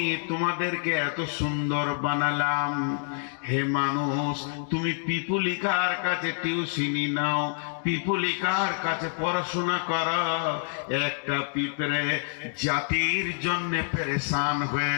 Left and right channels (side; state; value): right; silent; digital silence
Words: তোমাদেরকে এত সুন্দর বানালাম। হে মানুষ, তুমি পিপুলিকার কাছে টিউশনি নাও, পিপুলিকার কাছে পড়াশোনা করো। একটা পিঁপড়ে জাতির জন্য পেরেশান